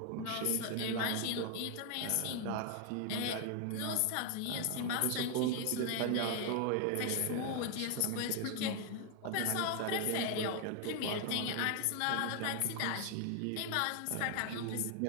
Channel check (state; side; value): different; both; correlation 0.00